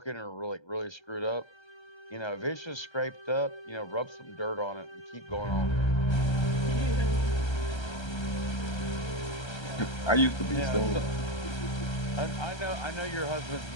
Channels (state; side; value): late; right; 1.3 ms